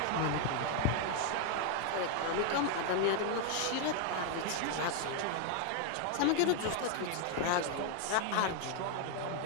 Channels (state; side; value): different; both; correlation 0.00